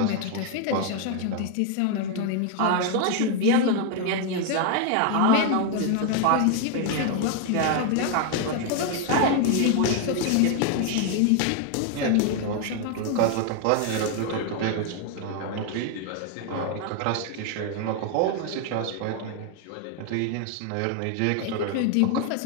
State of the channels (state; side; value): different; both; correlation 0.01